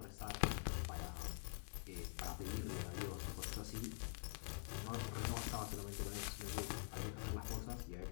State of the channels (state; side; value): silent; right; digital silence